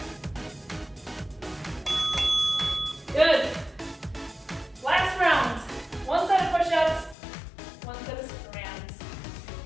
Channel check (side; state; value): right; drops out; at 7.2 s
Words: Good. Last round. 1 set of push-ups, 1 set of strands.